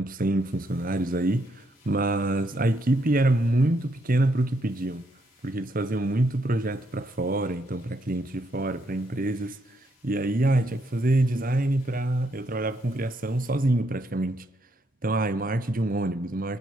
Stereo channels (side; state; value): both; normal; correlation 0.75